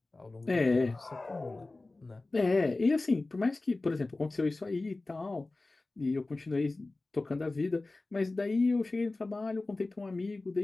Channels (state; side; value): quieter; right; 3.2 dB